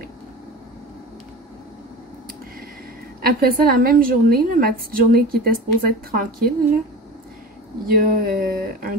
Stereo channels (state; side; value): normal; both; correlation 0.32